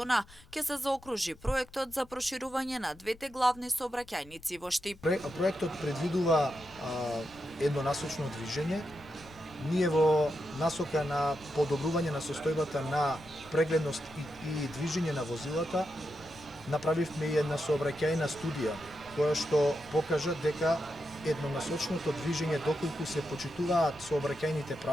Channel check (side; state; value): left; noise; rumble, 23 dB below the sound